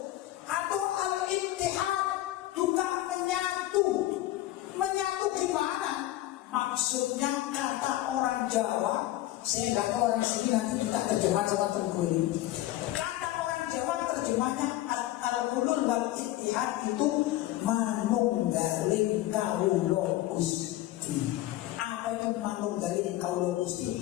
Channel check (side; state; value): right; quieter; 15.5 dB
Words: Atau al-ittihad juga menyatu. Menyatu gimana? Maksudnya kata orang Jawa, saya nggak tahu orang sini, nanti kita terjemah sama Tengku ini. Kata orang Jawa terjemahnya al-hulul wal ittihad itu manunggaling kawula Gusti. Apa itu manunggaling kawula